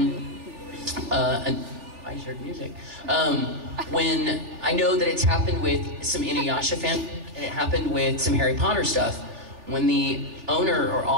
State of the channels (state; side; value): late; left; 3.4 ms